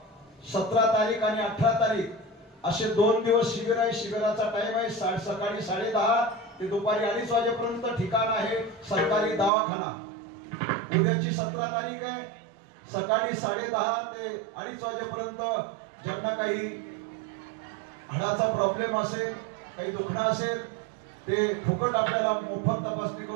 17 तारीख आणि 18 तारीख असे 2 दिवस शिबिर आहे. शिबिराचा टाइम आहे सकाळी 10:30 ते दुपारी 2:30 वाजेपर्यंत. ठिकाण आहे सरकारी दवाखाना. उद्याची 17 तारीख आहे. सकाळी 10:30 ते 2:30 वाजेपर्यंत ज्यांना काही हाडाचा प्रॉब्लेम असेल, काही दुखणं असेल, ते फुकट आपल्याला मोफत तपासणी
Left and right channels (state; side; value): drops out; left; at 9.5 s